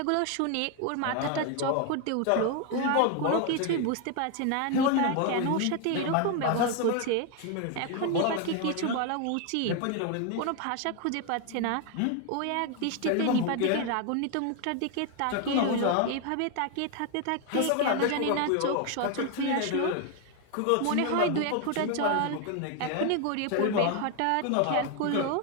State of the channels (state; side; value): different; both; correlation 0.01